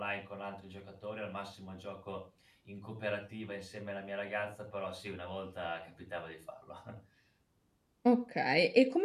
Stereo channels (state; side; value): identical; both; correlation 1.00